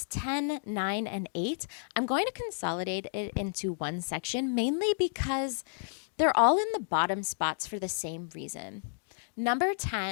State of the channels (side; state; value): right; silent; digital silence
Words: 10, 9, and 8, I'm going to consolidate it into one section, mainly because they're all in the bottom spots for the same reason. Number